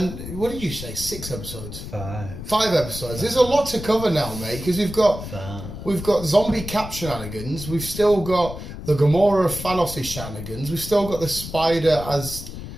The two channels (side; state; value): left; noise; rumble, 10 dB below the sound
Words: what did you say? 6 episodes? 5. 5 episodes. There's a lot to cover now, mate, because we've got zombie cap shenanigans. We've still got the Gamora Thanos shenanigans. We've still got the Spider as